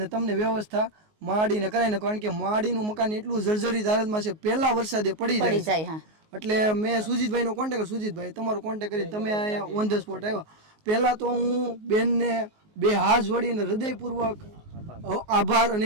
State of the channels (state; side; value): late; left; 19 ms